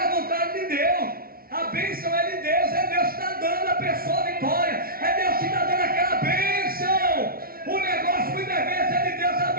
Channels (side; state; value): left; late; 0.43 ms